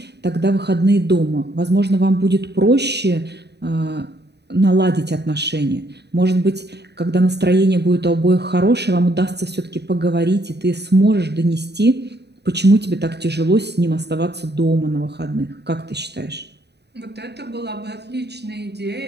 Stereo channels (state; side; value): late; left; 0.49 ms